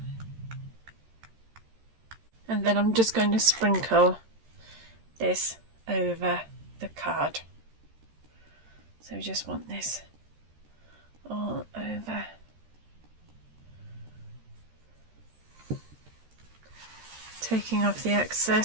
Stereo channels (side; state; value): left; late; 13 ms